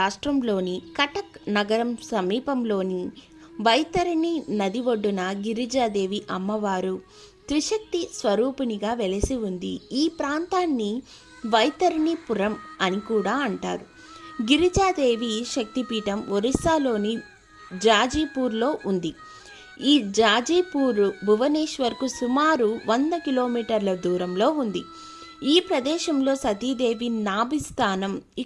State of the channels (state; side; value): identical; both; correlation 1.00